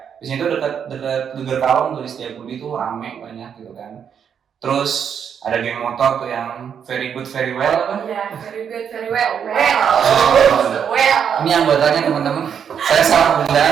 Di sini tuh dekat Geger Kalong tuh di Setiabudi tuh rame banyak gitu kan. Terus ada geng motor tuh yang very good very well apa? Iya, very good very well. Ini anggotanya teman-teman. Saya salah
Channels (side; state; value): left; quieter; 7.8 dB